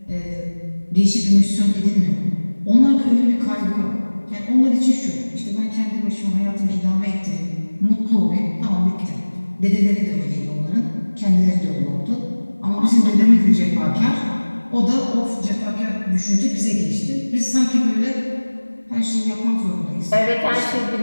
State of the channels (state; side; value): inverted; both; correlation -1.00